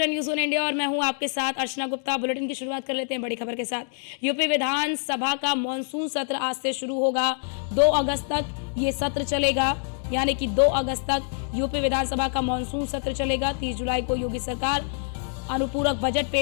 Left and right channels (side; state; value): right; silent; digital silence